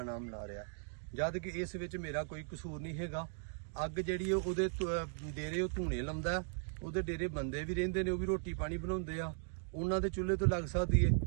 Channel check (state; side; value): silent; left; 53 dB below the other